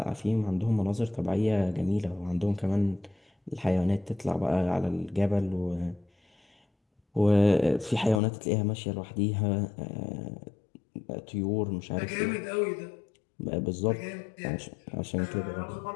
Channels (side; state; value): right; drops out; at 8.2 s